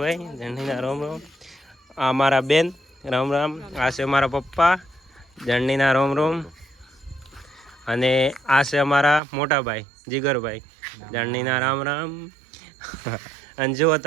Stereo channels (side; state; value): left; drops out; at 9.2 s